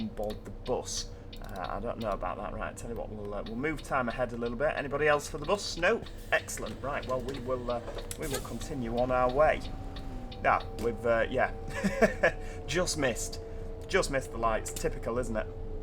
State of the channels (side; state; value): both; identical; correlation 1.00